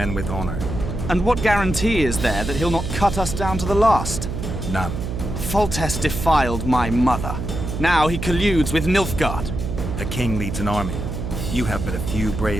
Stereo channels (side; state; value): right; noise; hum, 5 dB below the sound